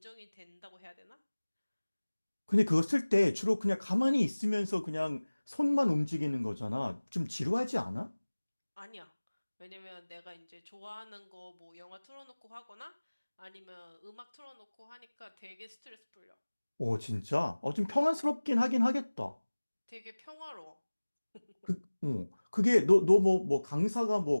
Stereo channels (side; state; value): both; inverted; correlation -1.00